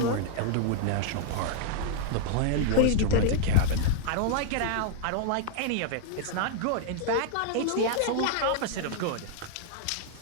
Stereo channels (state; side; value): different; both; correlation -0.01